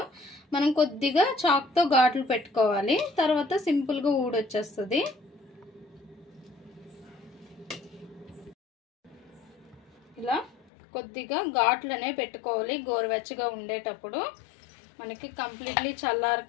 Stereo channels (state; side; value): drops out; right; at 10.6 s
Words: మనం కొద్దిగా చాక్తో ఘాట్లు పెట్టుకోవాలి. తర్వాత సింపుల్గా ఊడొచ్చేస్తుంది. ఇలా కొద్దిగా ఘాట్లనే పెట్టుకోవాలి గోరువెచ్చగా ఉండేటప్పుడు. మనకి కంప్లీట్లీ